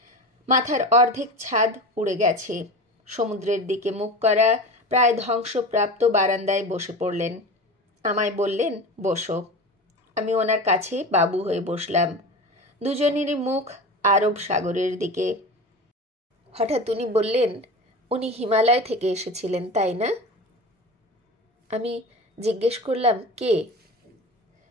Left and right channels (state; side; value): normal; both; correlation 0.30